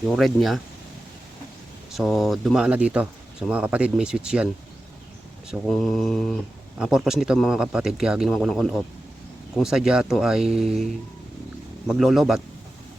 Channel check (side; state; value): both; normal; correlation 0.93